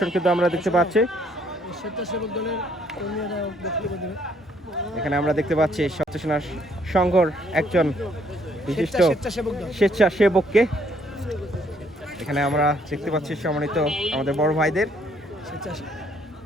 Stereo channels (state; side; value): normal; both; correlation 0.67